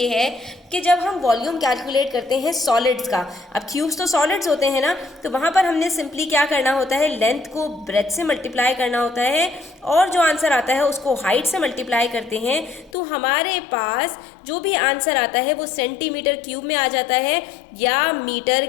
है कि जब हम वॉल्यूम कैलकुलेट करते हैं सॉलिड्स का, अब क्यूब्स तो सॉलिड्स होते हैं ना, तो वहाँ पर हमने सिंपली क्या करना होता है, लेंथ को ब्रेथ से मल्टीप्लाई करना होता है और जो आंसर आता है उसको हाइट से मल्टीप्लाई करते हैं तो हमारे पास जो भी आंसर आता है वो सेंटीमीटर क्यूब में आ जाता है या मीटर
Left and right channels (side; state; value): right; drops out; at 12.9 s